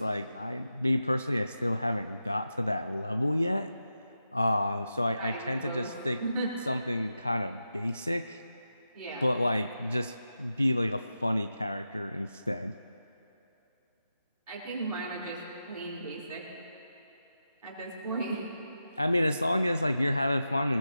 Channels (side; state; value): both; inverted; correlation -0.90